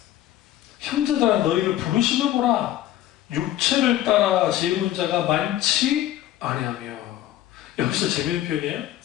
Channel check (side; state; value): right; quieter; 13.2 dB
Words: 형제들아 너희를 부르시며 보라. 육체를 따라 지혜로운 자가 많지 아니하며. 여기서 재미있는 표현이에요.